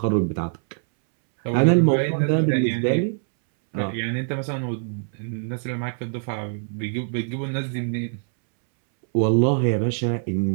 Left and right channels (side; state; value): left; silent; 63 dB below the other